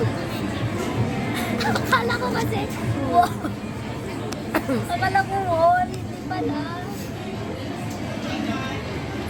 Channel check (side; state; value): both; identical; correlation 1.00